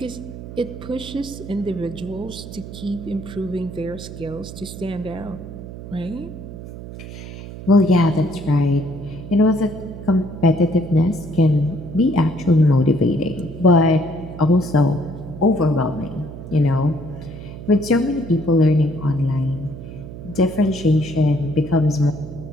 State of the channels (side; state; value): right; noise; hum, 12 dB below the sound